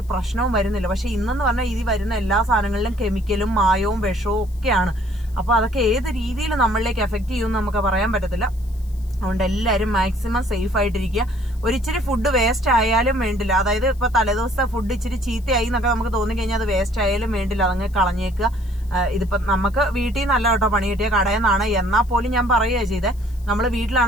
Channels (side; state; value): left; noise; hiss, 27 dB below the sound